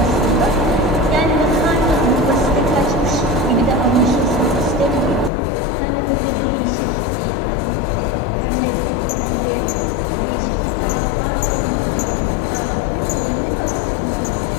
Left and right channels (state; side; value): drops out; right; at 5.3 s